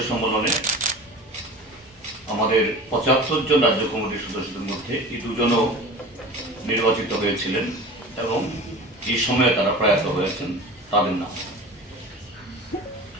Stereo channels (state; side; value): normal; both; correlation 0.37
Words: সম্মেলনে আমাদের 75 জন রাজ্য কমিটির সদস্যদের মধ্যে এই দুজনও নির্বাচিত হয়েছিলেন এবং এই সময়ে তারা প্রয়াত হয়েছেন, তাদের নাম।